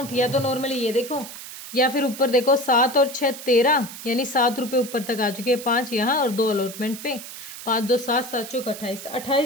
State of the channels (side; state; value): right; noise; hiss, 12 dB below the sound